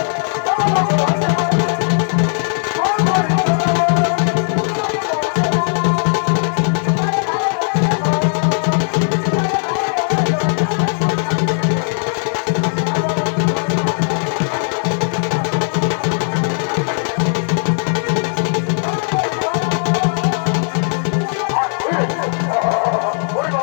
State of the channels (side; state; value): right; silent; 56 dB below the other